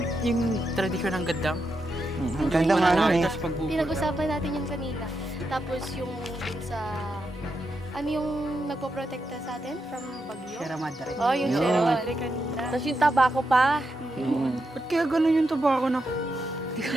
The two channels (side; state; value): both; normal; correlation 0.85